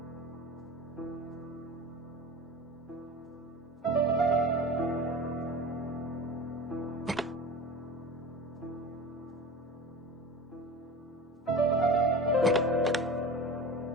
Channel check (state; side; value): normal; both; correlation 0.32